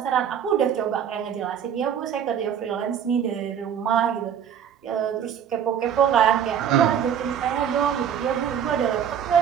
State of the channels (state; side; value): quieter; left; 8.7 dB